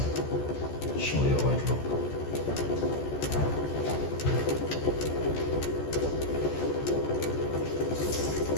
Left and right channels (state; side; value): late; right; 14 ms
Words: show you how it looks.